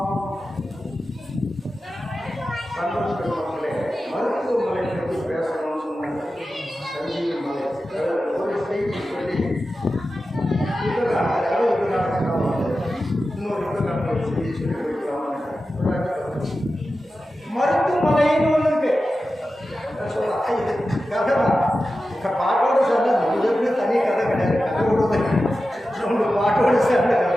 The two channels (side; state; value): both; normal; correlation 0.93